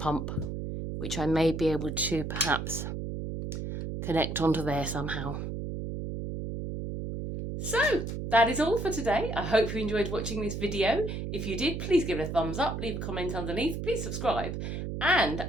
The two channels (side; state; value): right; noise; hum, 5 dB below the sound